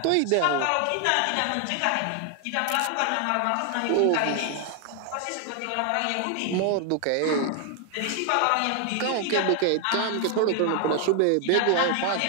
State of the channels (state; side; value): different; both; correlation 0.00